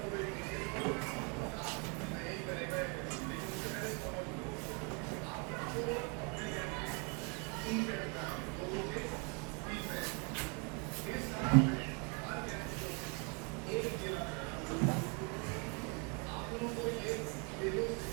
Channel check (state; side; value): quieter; left; 34.4 dB